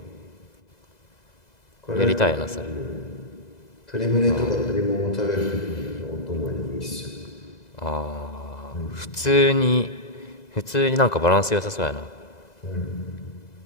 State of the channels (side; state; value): right; late; 2.0 ms